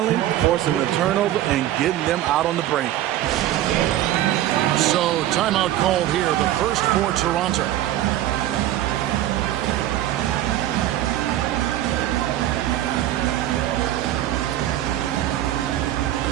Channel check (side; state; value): left; quieter; 13.4 dB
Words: forcing the turnover and getting them out on the break. So timeout called here, the first for Toronto.